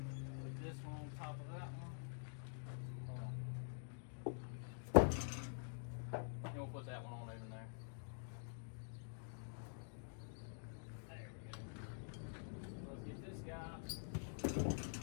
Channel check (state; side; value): silent; right; digital silence